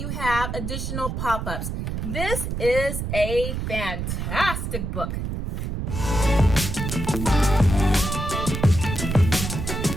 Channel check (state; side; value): noise; right; rumble, 3 dB below the sound